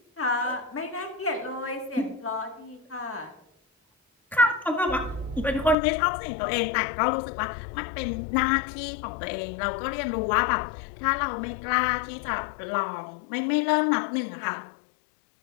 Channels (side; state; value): right; drops out; at 5.8 s